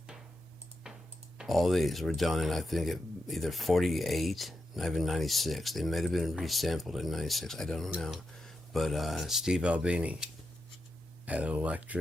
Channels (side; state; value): both; normal; correlation 0.87